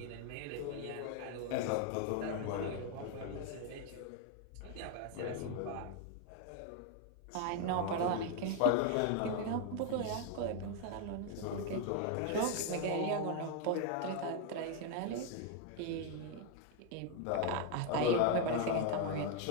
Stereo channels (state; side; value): different; both; correlation 0.01